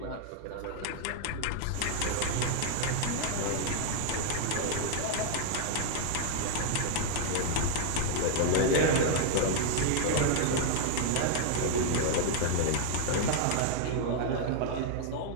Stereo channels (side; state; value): both; different; correlation 0.00